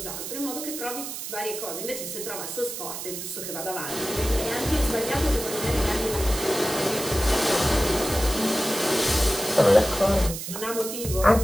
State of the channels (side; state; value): right; noise; hiss, 7 dB below the sound